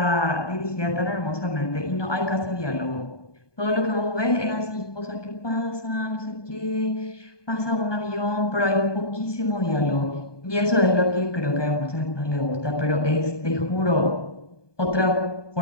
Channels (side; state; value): right; late; 1.2 ms